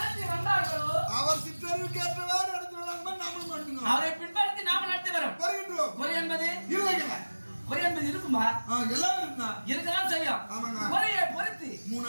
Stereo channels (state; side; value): inverted; both; correlation -1.00